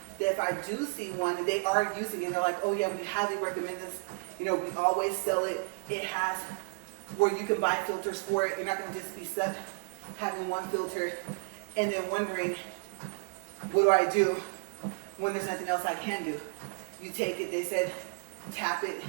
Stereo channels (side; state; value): left; silent; digital silence